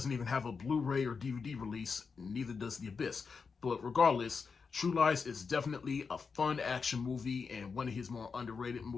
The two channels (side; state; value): right; quieter; 5.3 dB